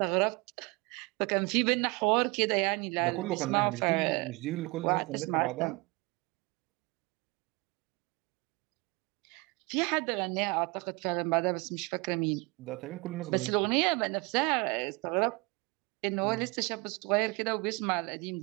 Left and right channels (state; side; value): quieter; left; 26.4 dB